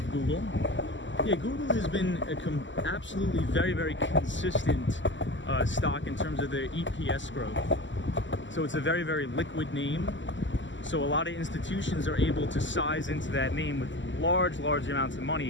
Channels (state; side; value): late; right; 0.54 ms